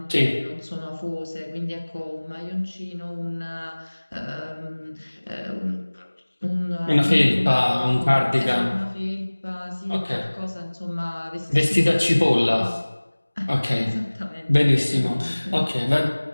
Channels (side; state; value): both; inverted; correlation -1.00